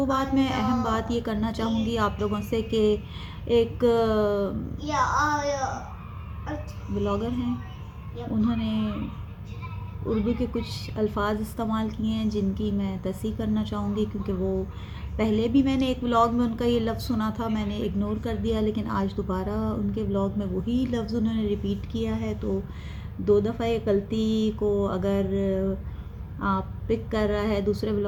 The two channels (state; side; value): identical; both; correlation 1.00